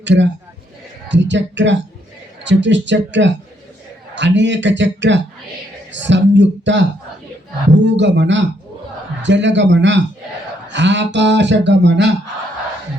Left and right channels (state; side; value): normal; both; correlation 0.73